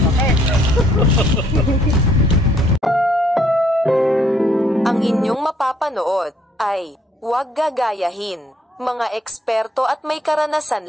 Ang inyong mapapanood ay huwag gagayahin. Mga eksperto at may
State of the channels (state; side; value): normal; both; correlation 0.66